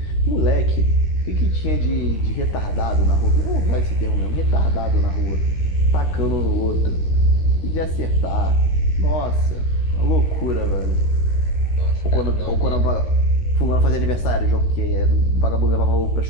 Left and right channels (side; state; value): right; late; 13 ms